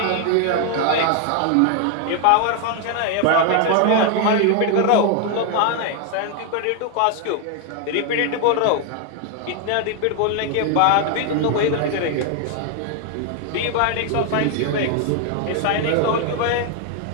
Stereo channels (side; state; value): both; different; correlation 0.00